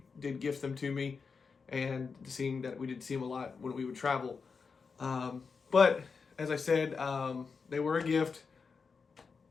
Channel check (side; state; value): right; quieter; 5.2 dB